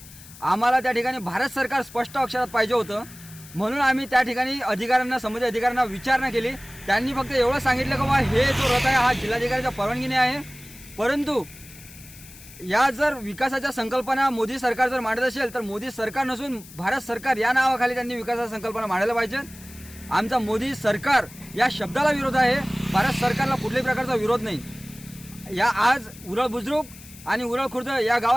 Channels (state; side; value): noise; left; hiss, 19 dB below the sound